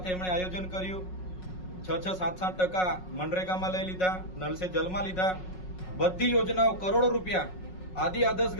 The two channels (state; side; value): late; right; 5.5 ms